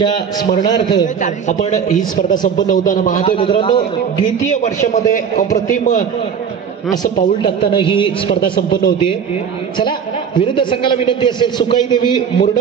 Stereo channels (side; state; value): left; quieter; 7.2 dB